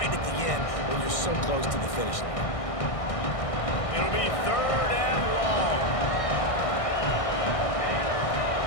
at the end when you're so close to the finish line. It'll be 3rd and long.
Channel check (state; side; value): late; right; 1.6 ms